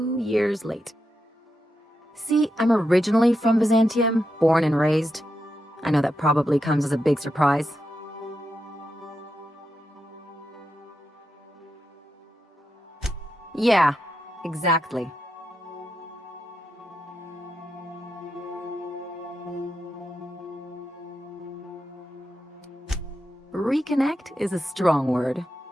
years late. See, I'm originally from Byzantium, born and raised. I know that probably comes as a big surprise. Yeah, exactly. Reconnect is a strong word.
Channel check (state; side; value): normal; both; correlation 0.86